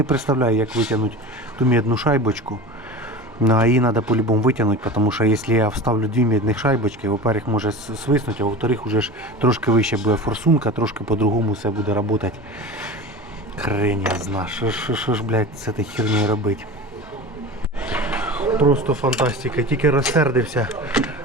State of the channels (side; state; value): both; normal; correlation 0.32